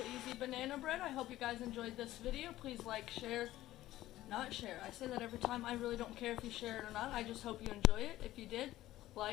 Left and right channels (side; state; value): right; quieter; 15.2 dB